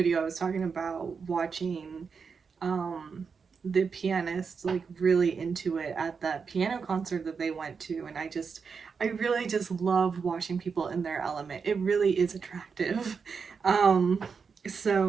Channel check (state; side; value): quieter; left; 5.6 dB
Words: I was talking about watching the pianist like really into it at that piano concert that they went to, and I really just love watching people in their element. It really is attractive.